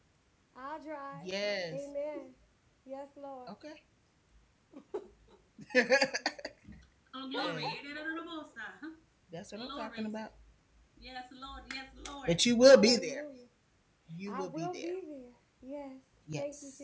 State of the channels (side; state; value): both; identical; correlation 1.00